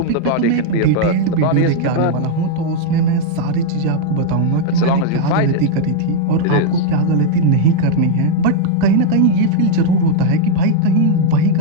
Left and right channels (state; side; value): different; both; correlation 0.00